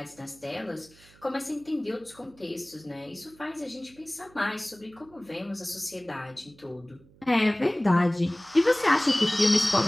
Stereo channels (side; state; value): right; noise; hum, 27 dB below the sound